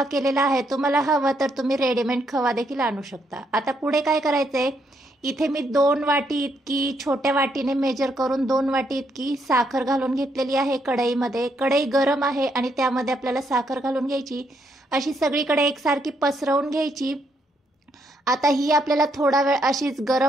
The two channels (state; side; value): normal; both; correlation 0.75